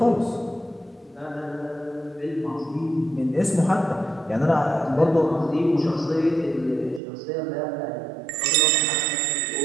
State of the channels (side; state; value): left; drops out; at 7.0 s